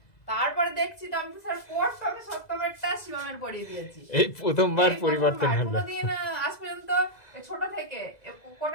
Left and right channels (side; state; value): right; late; 2.0 ms